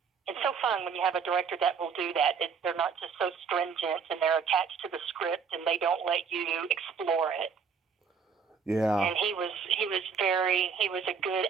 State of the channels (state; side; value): quieter; left; 6.1 dB